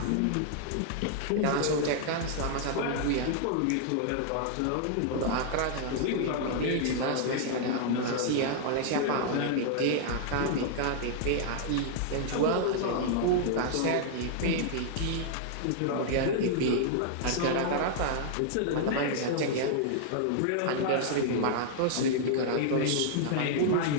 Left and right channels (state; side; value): different; both; correlation -0.01